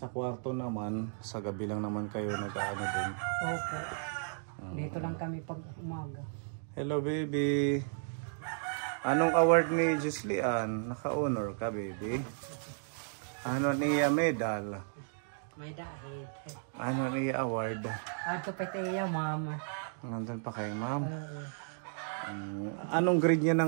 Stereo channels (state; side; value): silent; left; digital silence